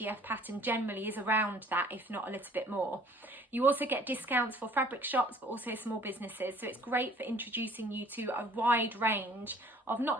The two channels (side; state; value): both; normal; correlation 0.54